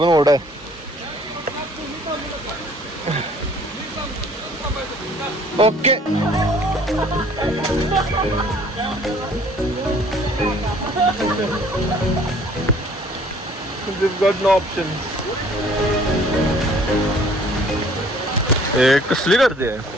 ओढ आहे. Okay. We've got no options. कसली गर्दी आहे.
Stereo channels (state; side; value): normal; both; correlation 0.56